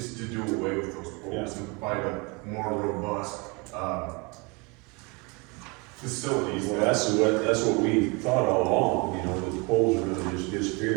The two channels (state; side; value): quieter; left; 29.0 dB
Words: to do away with those poles and provide a more robust, facilities. Well, that's what we thought all along, you know, that the poles are gonna just